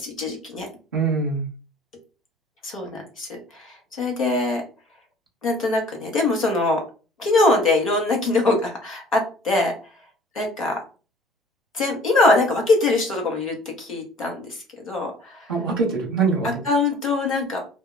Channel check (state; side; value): normal; both; correlation 0.51